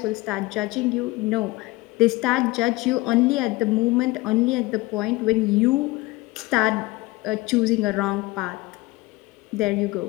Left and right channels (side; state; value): right; quieter; 20.9 dB